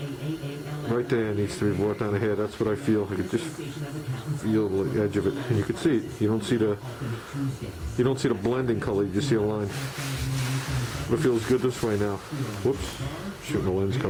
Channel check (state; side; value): identical; both; correlation 1.00